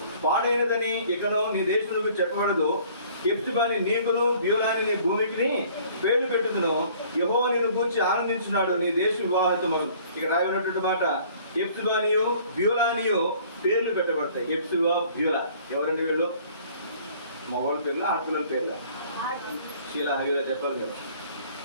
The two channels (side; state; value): both; inverted; correlation -0.55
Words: పాడైనదని ఇకను నీ దేశములకు చెప్పబడదు. ఎప్తిబాని నీకును బ్యూలాని నీ భూమికి పేర్లు పెట్టుదును. యెహోవా నిన్ను గూర్చి ఆనందించున్నాడు, నీ దేశ వివాహితమగు. ఇక రాయబడినటువంటి మాట, ఎప్తిబానియు బ్యూలానియు పేర్లు పెట్టబడతాయి. ఎప్తిబా బ్యూలా ఎవరండి వీళ్ళు? మగవాళ్ళ పేర్లు, ఆడపిల్లల పేర్ల? శీలా హైలా చెప్పాలి కదా.